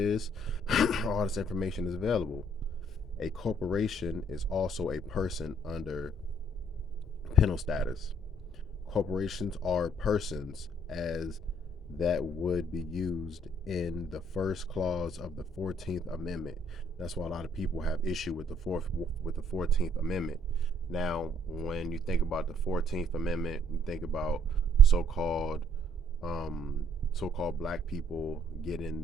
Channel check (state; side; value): normal; both; correlation 0.65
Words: All this information is available. A corporation is also a person under penal status. Corporations are persons as that would be used in the first clause of the 14th Amendment. That's why a lot of people have issue with the 14th Amendment. Now, when you think about the 14th Amendment, you think about so-called black people getting